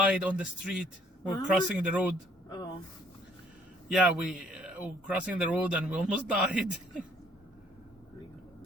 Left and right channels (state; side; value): normal; both; correlation 0.62